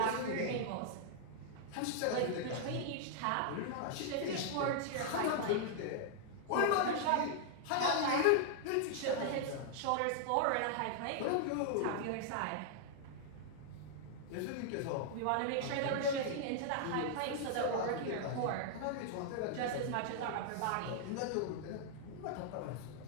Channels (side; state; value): both; different; correlation -0.01